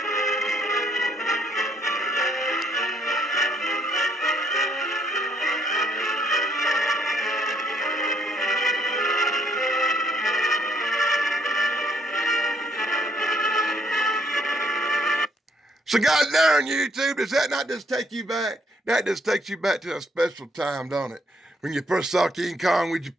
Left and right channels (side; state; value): both; normal; correlation 0.69